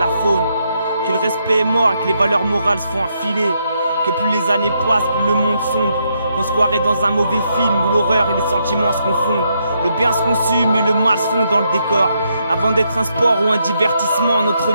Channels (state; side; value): inverted; both; correlation -0.78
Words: faune. Que le respect est mort et que les valeurs morales se font enfiler. Que plus les années passent, plus le monde sombre. Qu'on se croirait dans un mauvais film où l'horreur et les sentiments se confondent. Le bien se consume et le mal se fond dans le décor. Avant d'être un sport ou un divertissement, notre